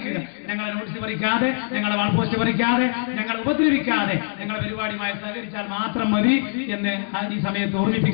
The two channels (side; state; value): right; silent; digital silence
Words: ഞങ്ങളെ നോട്ടീസ് പറിക്കാതെ, ഞങ്ങളെ വാൾ പോസ്റ്റ് പറിക്കാതെ, ഞങ്ങളെ ഉപദ്രവിക്കാതെ ഞങ്ങളുടെ പരിപാടിയുമായി സഹകരിച്ചാൽ മാത്രം മതി എന്ന് ഈ സമയത്ത്